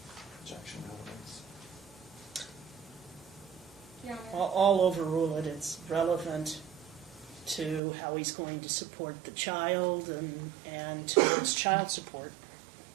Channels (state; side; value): drops out; left; at 7.8 s